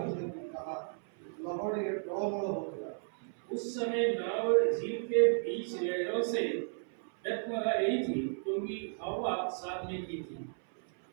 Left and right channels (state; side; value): silent; left; 55 dB below the other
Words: ଦେଖି ତାହା ଲହଡ଼ିରେ ଟଳମଳ ହେଉଥିଲା। उस समय नाव झील के बीच लहरों से डगमगा रही थी क्योंकि हवा साथ में की थी।